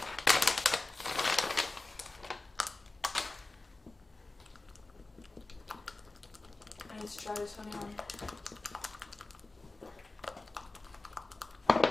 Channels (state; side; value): quieter; right; 3.2 dB